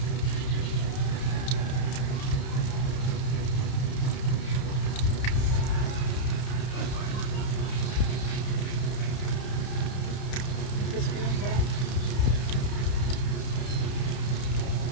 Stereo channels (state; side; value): late; right; 31 ms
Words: Crispy yung sarap.